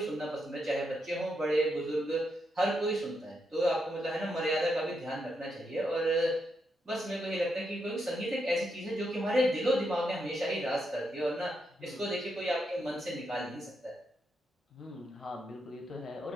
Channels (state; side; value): normal; both; correlation 0.82